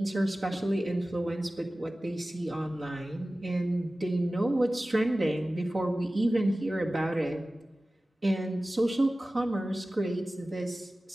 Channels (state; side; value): normal; both; correlation 0.96